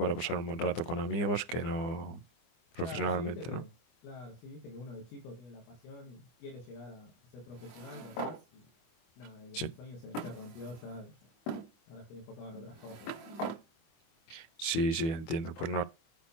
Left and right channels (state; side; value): late; right; 24 ms